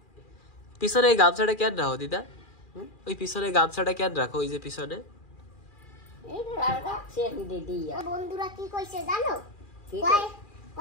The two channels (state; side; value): late; right; 2.4 ms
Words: পিছনে এই গামছাটা কেন রাখো দিদা? ওই পিছনে গামছাটা কেন রাখো? ওই যে পিছনে বন্ধুরা কি কইছে জানো?